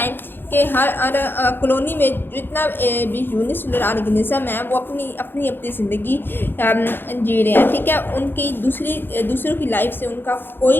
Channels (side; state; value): right; late; 0.10 ms